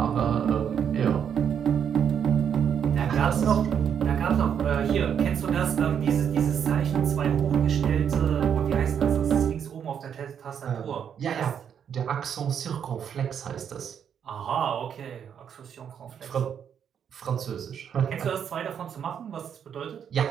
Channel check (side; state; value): left; quieter; 8.2 dB